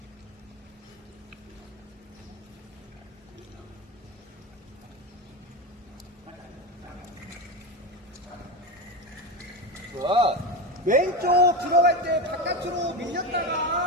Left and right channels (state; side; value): normal; both; correlation 0.18